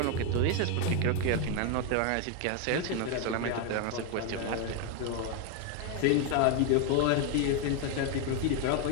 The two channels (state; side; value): different; both; correlation 0.01